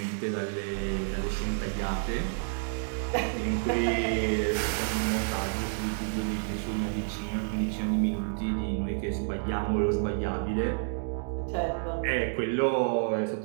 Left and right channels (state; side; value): silent; left; digital silence